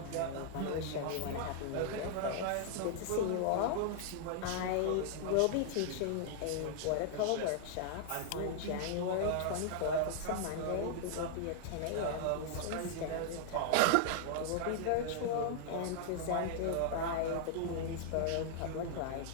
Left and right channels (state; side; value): different; both; correlation -0.01